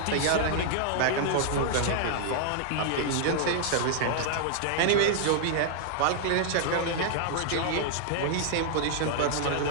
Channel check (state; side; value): different; both; correlation 0.00